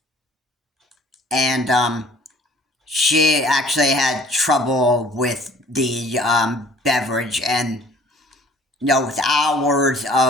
and she actually had trouble with the beverage, and with hours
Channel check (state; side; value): normal; both; correlation 0.53